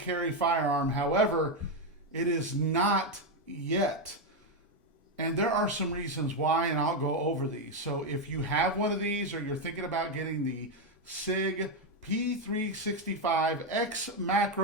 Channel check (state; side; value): normal; both; correlation 0.06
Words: firearm. However, it is not yet. And there are some reasons why, and I'll go over these. So if you have one of these or you're thinking about getting the SIG P365